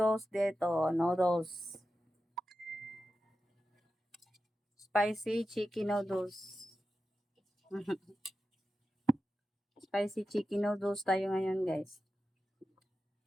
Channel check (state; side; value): normal; both; correlation 0.92